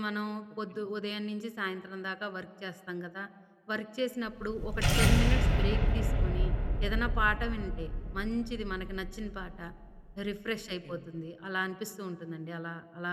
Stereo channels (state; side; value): identical; both; correlation 1.00